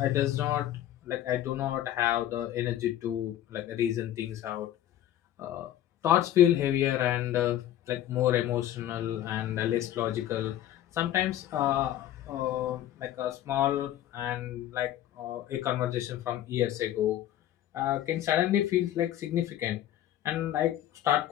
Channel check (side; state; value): right; quieter; 12.3 dB